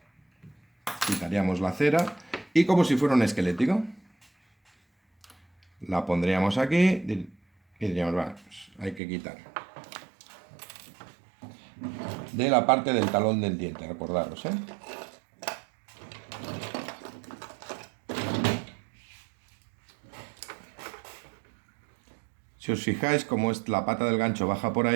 quitaríamos la cera y como si fuera un esquelético, la pondríamos aquí y diríamos, va, pues hay que quitar de la parte del talón del diente, recordaros, Si os fijáis, como es la pata del gancho baja por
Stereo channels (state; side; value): drops out; left; at 9.0 s